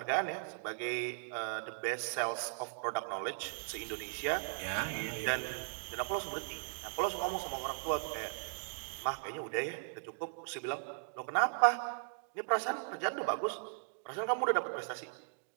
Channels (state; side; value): silent; left; digital silence